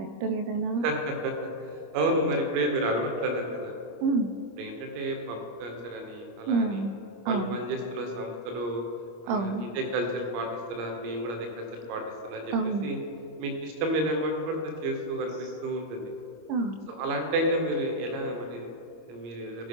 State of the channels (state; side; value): late; left; 25 ms